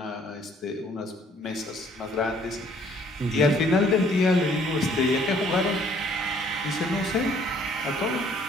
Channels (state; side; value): normal; both; correlation 0.60